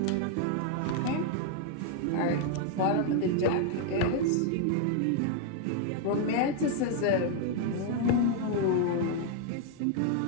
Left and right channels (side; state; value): both; different; correlation 0.00